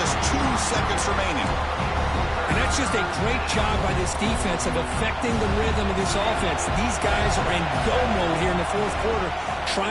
2 seconds remaining. And That's just a great job by this defense of affecting the rhythm of this offense. These guys are in go mode here in the fourth quarter,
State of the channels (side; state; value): both; identical; correlation 1.00